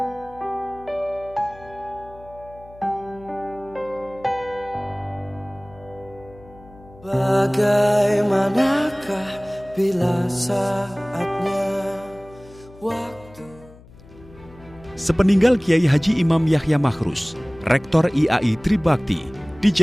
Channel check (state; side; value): noise; left; hum, 22 dB below the sound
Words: Bagaimanakah bila saatnya waktu. Sepeninggal Kiai Haji Imam Yahya Makhrus, Rektor IAI Tribakti